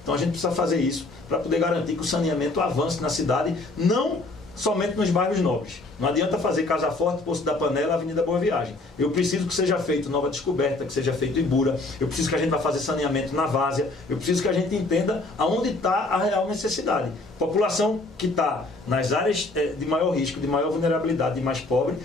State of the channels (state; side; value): quieter; right; 3.0 dB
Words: Então a gente precisa fazer isso para poder garantir que o saneamento avance na cidade, não somente nos bairros nobres. Não adianta fazer Casa Forte, Poço da Panela, Avenida Boa Viagem. Eu preciso que seja feito Nova Descoberta, que seja feito Ibura. Eu preciso que a gente vá fazer saneamento na Várzea. Eu preciso que a gente entenda aonde está a real necessidade. População que está nas áreas de maior risco, de maior vulnerabilidade, de mais pobre,